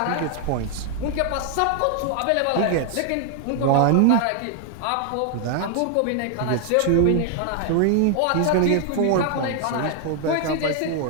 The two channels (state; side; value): different; both; correlation 0.00